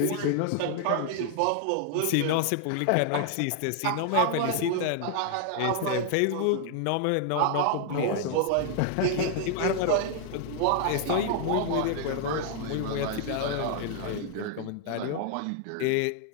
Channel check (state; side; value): different; both; correlation 0.00